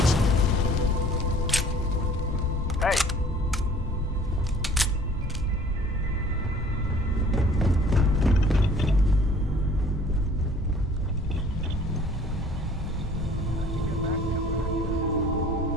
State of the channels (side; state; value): both; normal; correlation 0.52